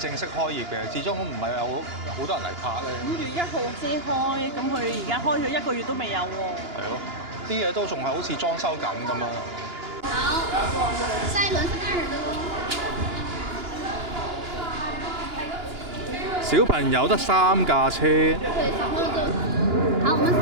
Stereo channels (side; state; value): left; late; 2.9 ms